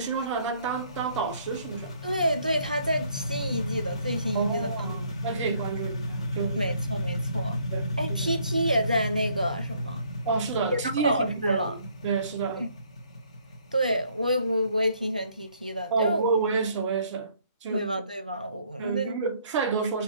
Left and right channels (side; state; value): both; inverted; correlation -0.65